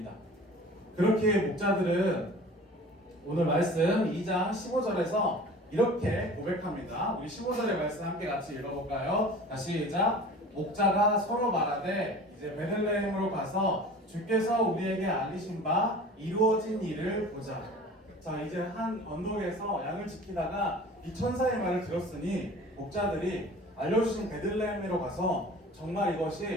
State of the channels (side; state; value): both; normal; correlation 0.42